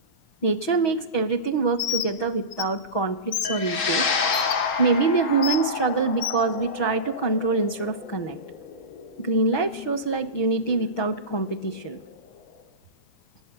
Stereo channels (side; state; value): right; late; 6.2 ms